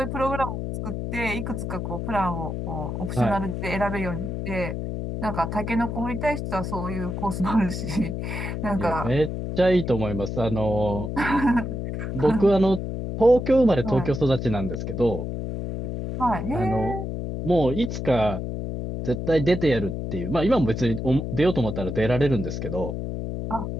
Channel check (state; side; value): noise; left; hum, 4 dB below the sound